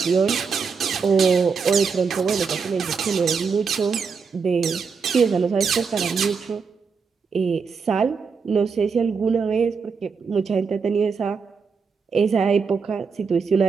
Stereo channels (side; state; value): left; quieter; 5.5 dB